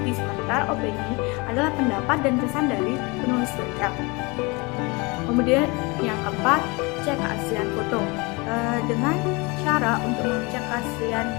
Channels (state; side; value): quieter; right; 27.0 dB